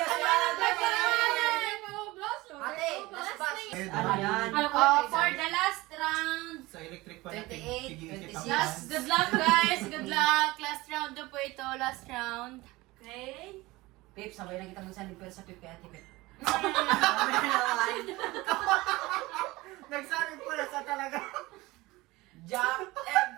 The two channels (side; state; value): left; quieter; 20.5 dB